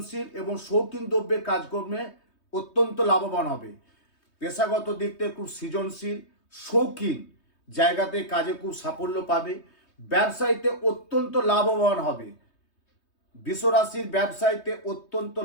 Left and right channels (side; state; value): right; late; 3.2 ms